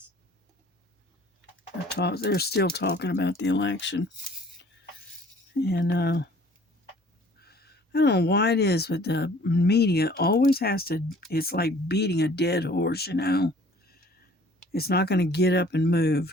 They're still talking about the election. And I don't know why it is, but the media always has to... It's like beating a dead horse, you know. It's not going to get up and move.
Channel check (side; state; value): both; normal; correlation 0.54